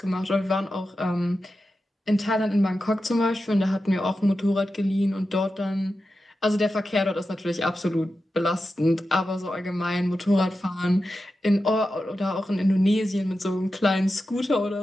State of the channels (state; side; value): normal; both; correlation 0.91